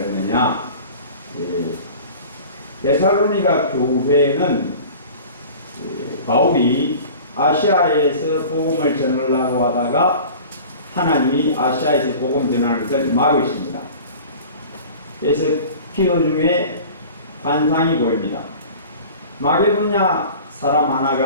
데살로니가 교회는 바울이 아시아에서 복음을 전하려고 하다가 하나님이 아시아에서 복음 전하는 것을 막으십니다. 그래서 기도 중에 환상이 보입니다. 마게도냐 사람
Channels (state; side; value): inverted; both; correlation -0.41